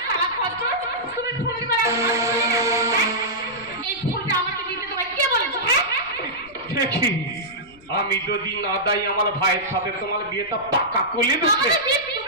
তুমি ফুল দিবা এই ফুলটা আমাকে দিতে তোমায় কে বলেছে হ্যাঁ দেখি আমি যদি না দাই আমার ভাইয়ের সাথে তোমার বিয়েটা পাকা করে দিতে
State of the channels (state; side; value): noise; left; rumble, 26 dB below the sound